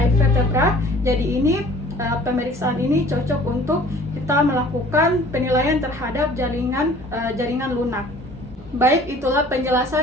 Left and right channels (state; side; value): normal; both; correlation 0.51